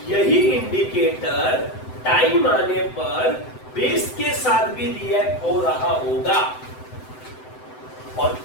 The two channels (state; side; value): late; right; 7.9 ms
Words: यही इंडिकेटर टाइम आने पर बेस के साथ भी रिएक्ट हो रहा होगा, और